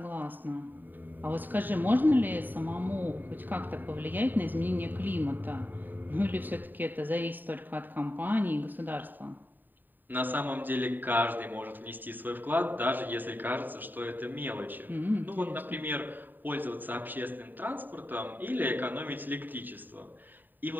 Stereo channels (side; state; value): left; late; 0.090 ms